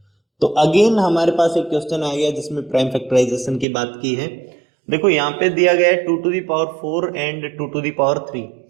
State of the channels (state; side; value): drops out; left; at 3.7 s